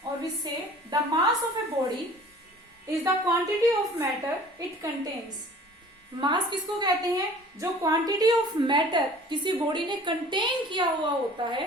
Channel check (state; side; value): normal; both; correlation 0.47